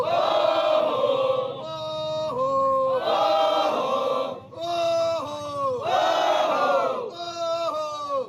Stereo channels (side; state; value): both; identical; correlation 1.00